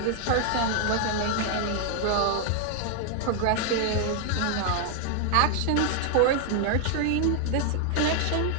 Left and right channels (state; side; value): different; both; correlation 0.00